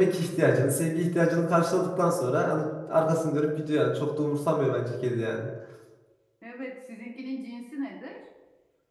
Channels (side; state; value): both; identical; correlation 1.00